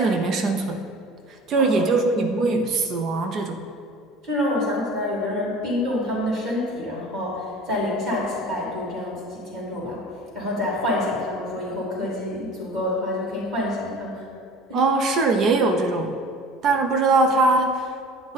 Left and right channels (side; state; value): both; normal; correlation 0.42